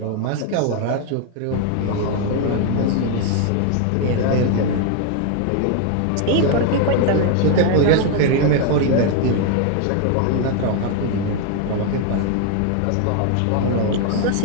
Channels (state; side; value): different; both; correlation 0.00